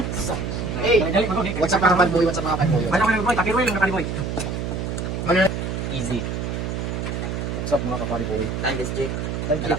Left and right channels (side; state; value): right; noise; hum, 3 dB below the sound